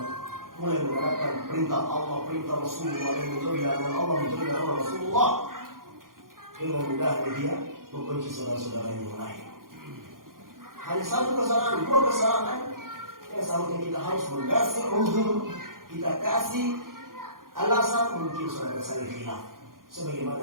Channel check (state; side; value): late; left; 0.91 ms